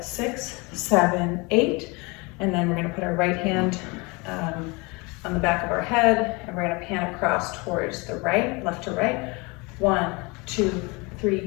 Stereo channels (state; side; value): quieter; right; 27.2 dB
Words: 7, 8. And then we're gonna put our right hand on the back of our head, and we're gonna pan across towards the right, left to right. 1, 2,